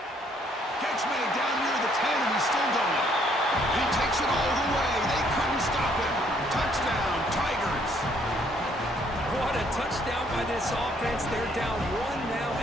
Catch made down near the 10, and he's still going. And he takes it all the way. They couldn't stop him. Touchdown, Tigers. What a touchdown by this offense. They're down 1 now,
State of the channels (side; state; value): both; normal; correlation 0.66